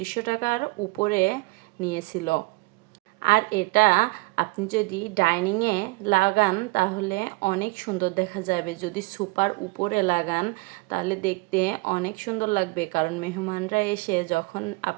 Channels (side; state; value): left; quieter; 25.2 dB